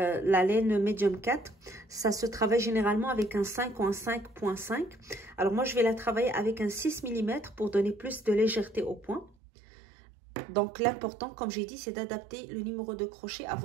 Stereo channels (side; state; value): left; drops out; at 9.3 s